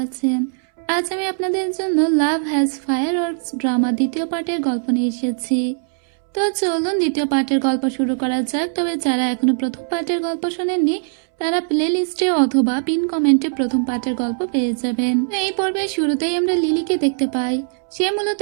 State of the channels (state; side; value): silent; left; 66 dB below the other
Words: আছেন। আজ আমি আপনাদের জন্য লাভ হ্যাজ ফায়ারওয়ার্কস ড্রামা দ্বিতীয় পার্টের গল্প নিয়ে এসেছি। তো চলুন দ্বিতীয় পার্টের গল্প শুরু করা যাক। তবে যারা এখনো প্রথম পার্টের গল্প শোনেননি তারা প্লে লিস্টে অথবা পিন কমেন্টে প্রথম পার্টের গল্প পেয়ে যাবেন। এই পর্বের শুরুতেই আমরা লিলিকে দেখতে পাই। সে মূলত